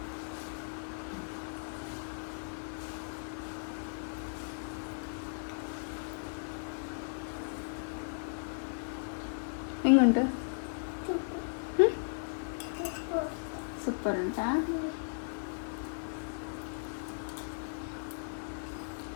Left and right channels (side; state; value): right; silent; 54 dB below the other